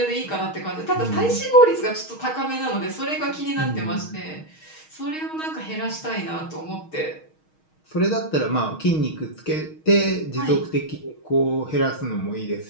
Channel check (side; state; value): right; late; 6.4 ms